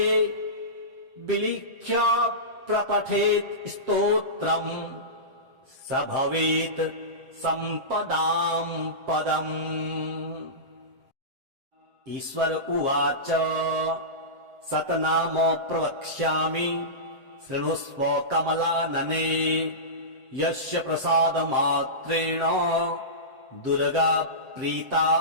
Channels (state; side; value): late; left; 7.7 ms